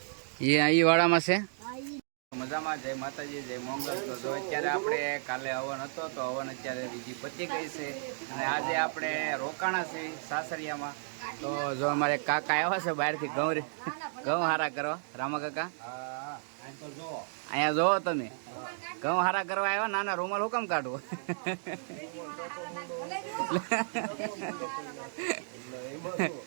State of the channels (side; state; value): left; silent; digital silence